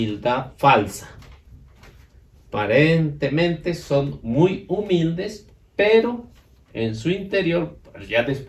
falsa. Aparentemente son muy humildes, pero en su interior, ya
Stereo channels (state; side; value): identical; both; correlation 1.00